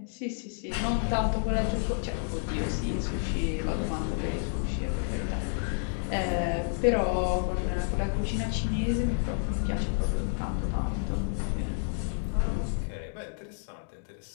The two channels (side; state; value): right; silent; 56 dB below the other